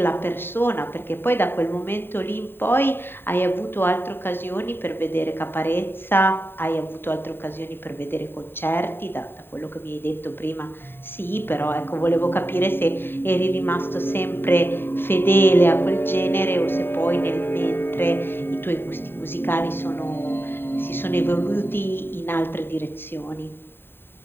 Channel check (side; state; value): right; late; 0.11 ms